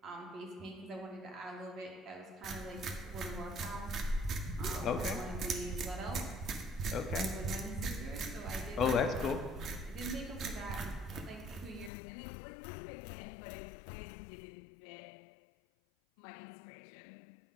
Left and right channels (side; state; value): right; drops out; at 11.9 s